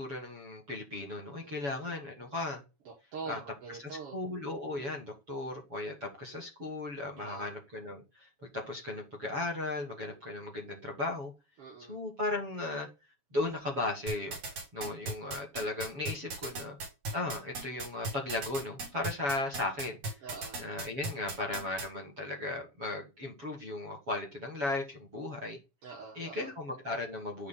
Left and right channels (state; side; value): late; left; 7.2 ms